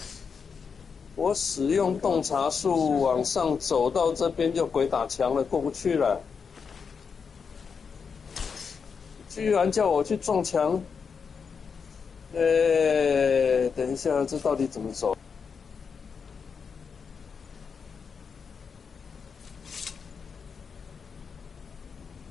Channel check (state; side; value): quieter; right; 5.9 dB